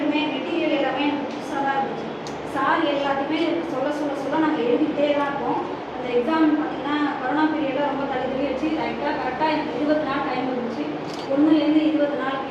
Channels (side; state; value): both; identical; correlation 1.00